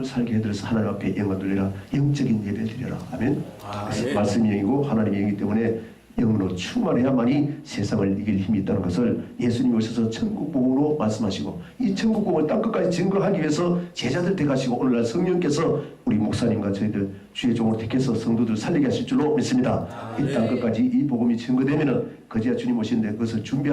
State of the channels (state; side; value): identical; both; correlation 1.00